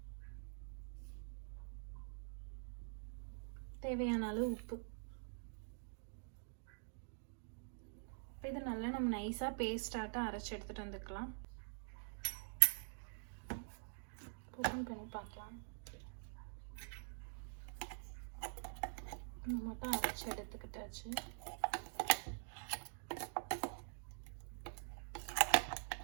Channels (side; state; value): left; silent; digital silence